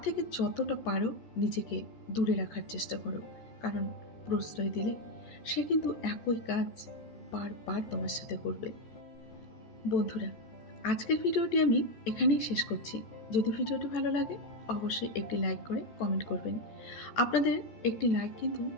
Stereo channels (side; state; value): right; late; 14 ms